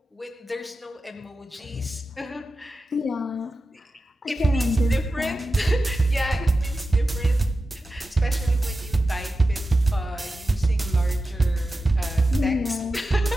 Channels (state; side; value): normal; both; correlation 0.93